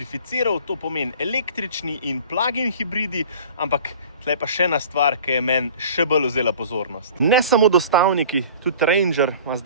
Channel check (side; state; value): both; inverted; correlation -0.44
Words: to pomeni električni in plug-in hibridi, ampak tle pa še ena stvar, ki je meni še bolj vzela pozornost. Ne samo dostavniki, tudi Ranger ima